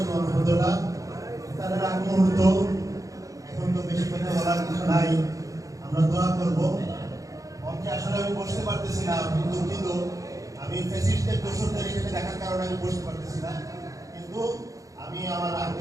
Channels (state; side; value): late; left; 0.16 ms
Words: ওয়া রাহমাতুল্লাহ। তার আগ মুহূর্ত এখন তো বেশি কথা বলার কিছু নাই, আমরা দোয়া করব। মঞ্চে আসলে আমি বসতে পারতেছি না, কিন্তু আমি ফেসিস্টদের দোষরদের এখানে দেখার কারণে আমি বসতে পারতেছি না, কিন্তু আমি আমার